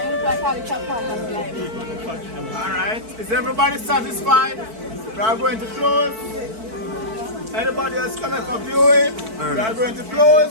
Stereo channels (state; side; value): late; left; 4.5 ms